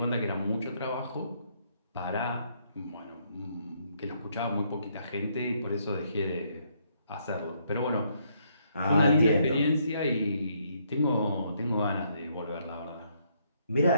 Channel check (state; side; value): inverted; both; correlation -0.72